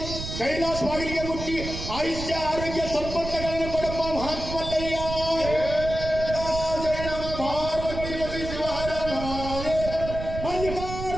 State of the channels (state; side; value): noise; right; rumble, 7 dB below the sound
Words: ಕೈಲಾಸವಾಗಲಿಗೆ ಮುಟ್ಟಿ ಆಯುಷ್ಯ ಆರೋಗ್ಯ ಸಂಪತ್ತುಗಳನ್ನು ಕೊಡಪ್ಪ ಮಹಾತ್ಮಲ್ಲಯ್ಯ ಜಯ ನಮ ಪಾರ್ವತಿ ಪತಿ ಶಿವಹರ